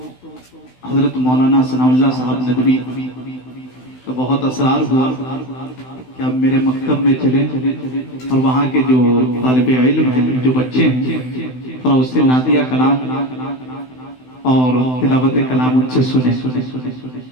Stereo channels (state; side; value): late; right; 16 ms